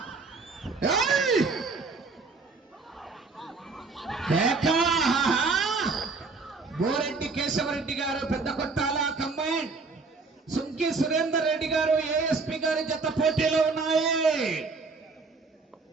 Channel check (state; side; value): quieter; left; 4.1 dB